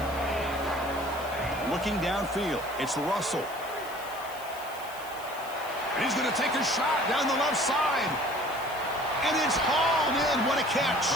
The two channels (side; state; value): left; noise; hiss, 17 dB below the sound